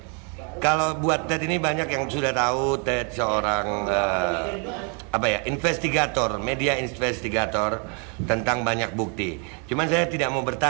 kalau buat Ted ini banyak yang sudah tahu Ted seorang investigator, media investigator tentang banyak bukti. Cuman saya tidak mau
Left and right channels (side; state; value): left; quieter; 37.1 dB